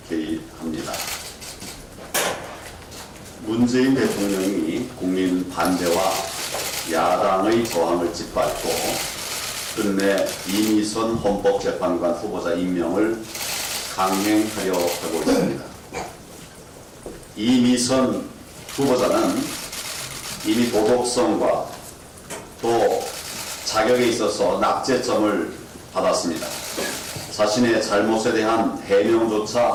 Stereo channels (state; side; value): identical; both; correlation 1.00